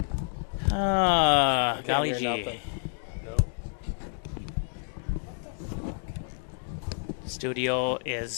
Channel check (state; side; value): silent; right; digital silence